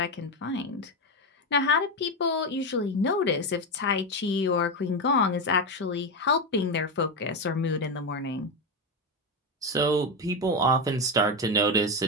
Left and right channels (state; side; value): normal; both; correlation 0.12